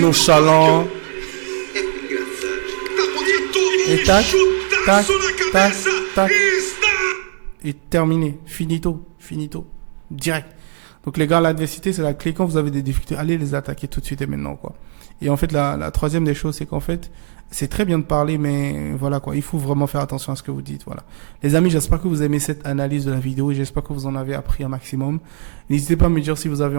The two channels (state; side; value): silent; left; digital silence